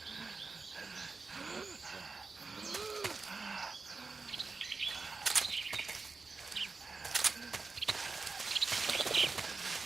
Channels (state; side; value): quieter; left; 4.2 dB